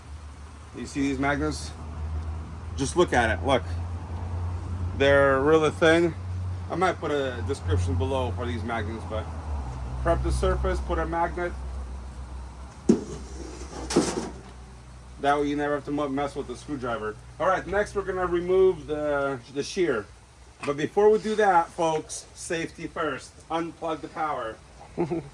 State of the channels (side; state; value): both; identical; correlation 1.00